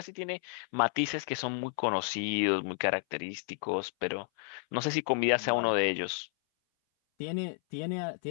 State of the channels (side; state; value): right; silent; 57 dB below the other